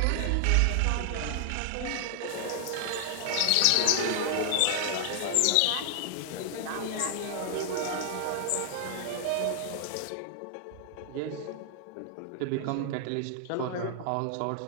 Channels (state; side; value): different; both; correlation 0.00